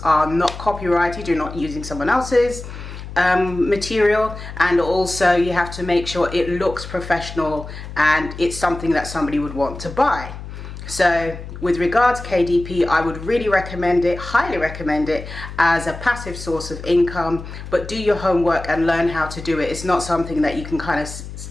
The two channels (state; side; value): noise; left; hum, 11 dB below the sound